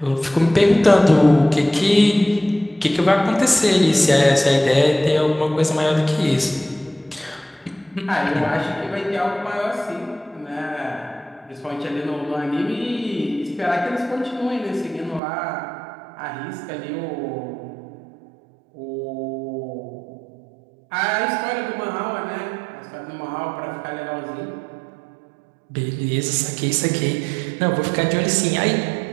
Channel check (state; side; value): drops out; left; at 15.2 s